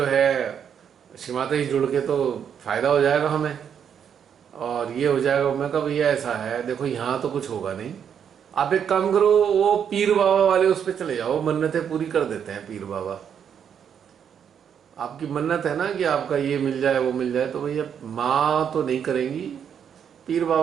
है श्रीमाता जी जुड़ के तो फायदा हो जाएगा हमें और ये हो जाएगा, मैं कहा भैया ऐसा है, देखो यहाँ तो कुछ होगा नहीं, आप एक काम करो, वो पीर बाबा वाले उस पर चले जाओ, मन्नतें पूरी कर देते हैं पीर बाबा। आपकी मन्नत है ना कि आपका ये मिल जाए वो मिल जाए, तो भैया माँ तो नहीं करेंगी, पीर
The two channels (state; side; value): quieter; left; 8.1 dB